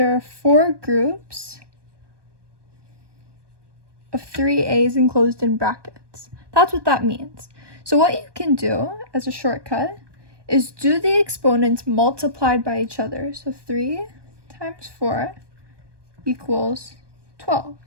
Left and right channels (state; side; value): late; left; 1.2 ms